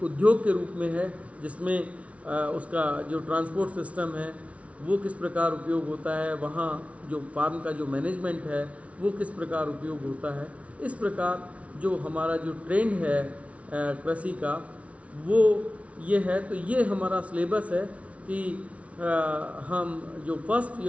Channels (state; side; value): late; left; 0.064 ms